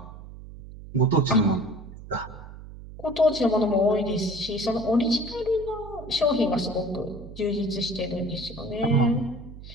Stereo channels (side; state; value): right; noise; hum, 15 dB below the sound